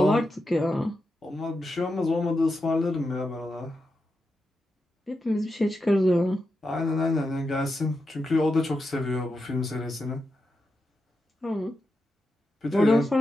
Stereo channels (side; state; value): both; normal; correlation 0.88